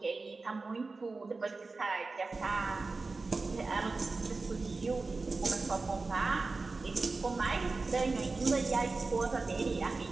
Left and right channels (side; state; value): left; quieter; 3.8 dB